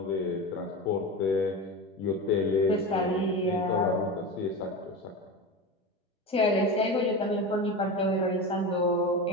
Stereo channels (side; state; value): both; normal; correlation 0.25